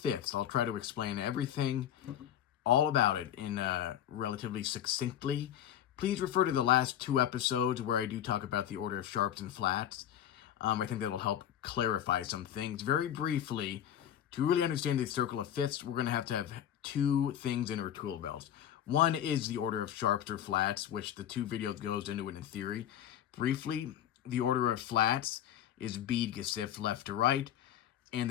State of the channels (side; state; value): right; quieter; 10.5 dB